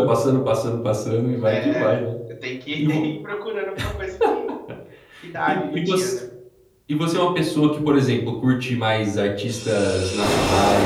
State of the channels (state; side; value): identical; both; correlation 1.00